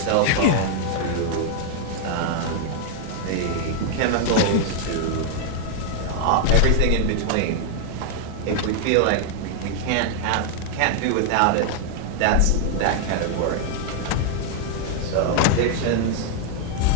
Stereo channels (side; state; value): both; different; correlation 0.00